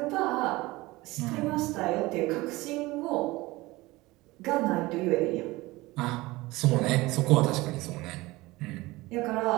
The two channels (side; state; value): left; quieter; 20.5 dB